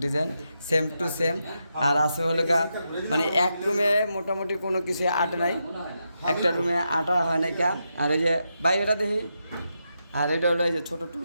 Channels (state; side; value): inverted; both; correlation -0.85